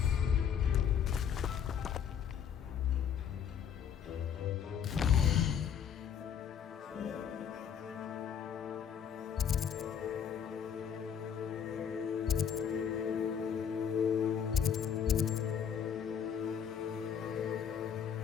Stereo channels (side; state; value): right; quieter; 8.0 dB